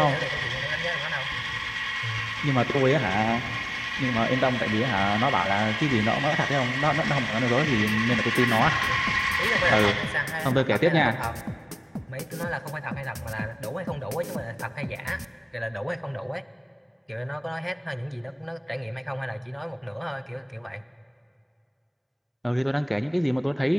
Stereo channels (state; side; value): identical; both; correlation 1.00